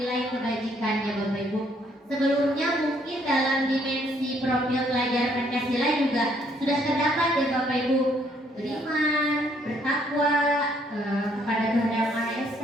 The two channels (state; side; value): normal; both; correlation 0.67